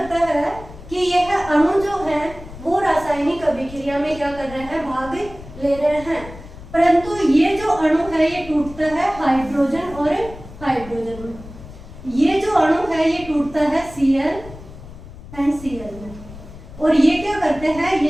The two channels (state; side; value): noise; left; rumble, 16 dB below the sound